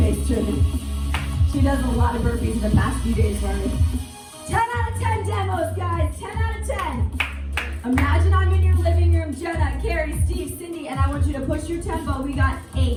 Trinity. She does a lot of burpees in the past few days for me. 10 out of 10 demos, guys, 10 out of 10. Imagine I'm in your living room, Jenna, Carrie, Steve, Cindy, and I want you to push your tempo. We got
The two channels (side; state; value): both; identical; correlation 1.00